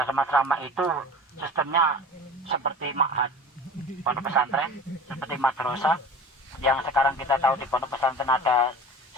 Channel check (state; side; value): normal; both; correlation 0.38